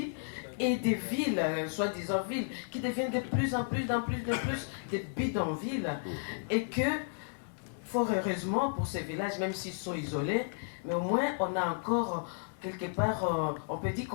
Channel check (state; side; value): silent; right; digital silence